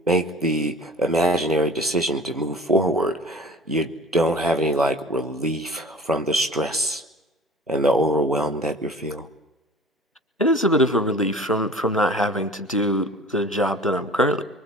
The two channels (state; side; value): normal; both; correlation 0.43